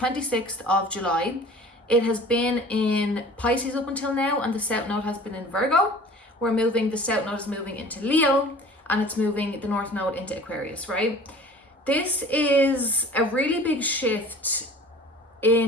of July. It has been in Pisces up until now, and the South Node has been in Virgo. The South Node is moving into Leo, and it's moving the North Node into Aquarius, right? This is a really big shift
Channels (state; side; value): normal; both; correlation 0.45